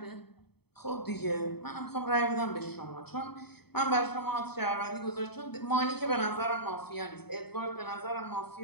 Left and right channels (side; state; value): right; late; 0.97 ms